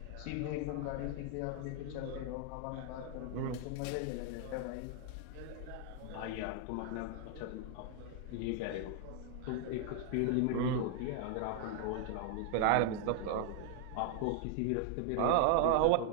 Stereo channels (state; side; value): different; both; correlation 0.00